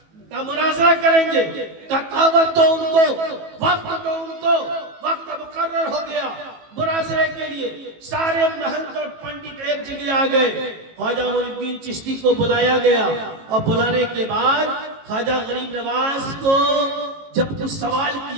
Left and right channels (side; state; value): left; late; 18 ms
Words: کہا مناظرہ کریں گے، کہا دعوت دو ان کو، وقت دو ان کو۔ وقت مقرر ہو گیا مناظرے کے لیے، سارے مہنت اور پنڈت ایک جگہ آ گئے، خواجہ معین الدین چشتی کو بلایا گیا، اور بلانے کے بعد خواجہ غریب نواز کو جب کچھ سوال